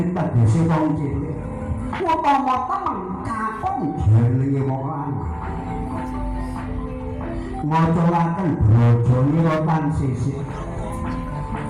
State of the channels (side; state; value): both; identical; correlation 1.00